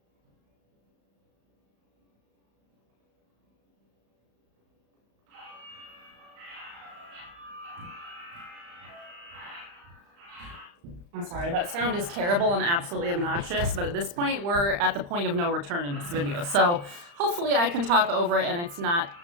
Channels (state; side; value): late; left; 35 ms